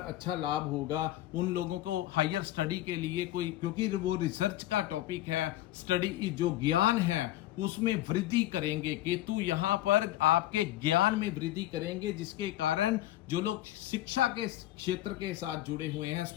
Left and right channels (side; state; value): right; quieter; 14.9 dB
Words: अच्छा लाभ होगा, उन लोगों को हायर स्टडी के लिए कोई, क्योंकि वो रिसर्च का टॉपिक है, स्टडी जो ज्ञान है उसमें वृद्धि करेंगे। केतु यहाँ पर आपके ज्ञान में वृद्धि करेंगे, जिसके कारण जो लोग शिक्षा के क्षेत्र के साथ जुड़े हुए हैं,